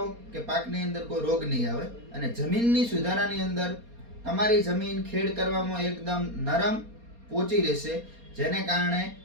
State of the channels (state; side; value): late; left; 4.3 ms